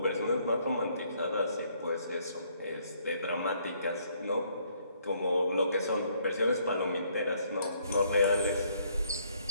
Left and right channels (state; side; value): inverted; both; correlation -0.67